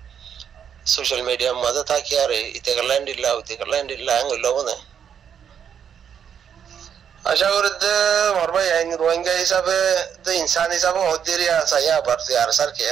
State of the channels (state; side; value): quieter; left; 8.2 dB